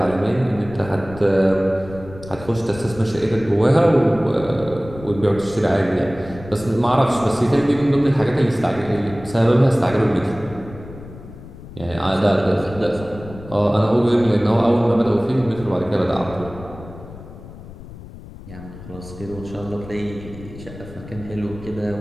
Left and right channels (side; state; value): left; noise; rumble, 16 dB below the sound